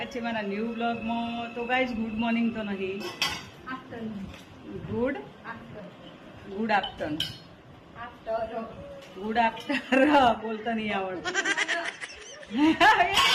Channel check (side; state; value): both; identical; correlation 1.00